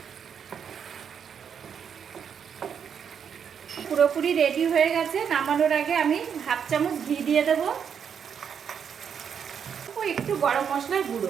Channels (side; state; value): left; quieter; 7.5 dB